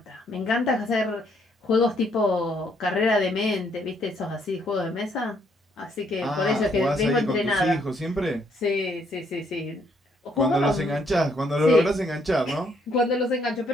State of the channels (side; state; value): both; normal; correlation 0.70